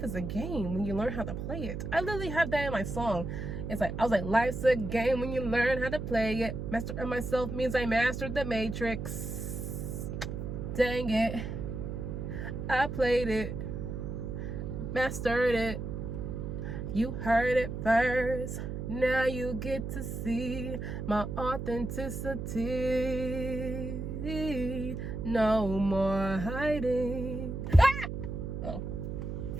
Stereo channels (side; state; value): right; noise; hum, 5 dB below the sound